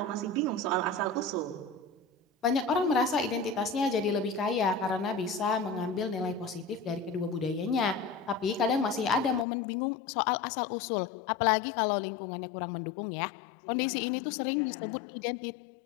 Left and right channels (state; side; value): drops out; right; at 9.5 s